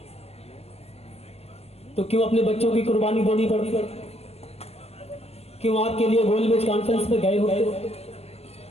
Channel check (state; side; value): late; right; 0.30 ms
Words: तो क्यों अपने बच्चों की कुर्बानी देनी पड़ती? क्यों आपके लिए गोलमेज कॉन्फ्रेंस में गए होते?